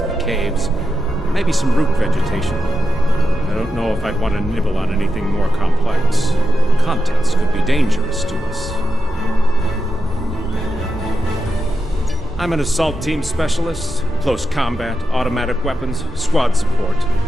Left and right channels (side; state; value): both; normal; correlation 0.88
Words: the caves, maybe some root vegetation. I don't know if I'd want to nibble on anything more complex. The contents could be dangerous to us. I'm an assault team specialist, close combat, automatic weapons, squad support.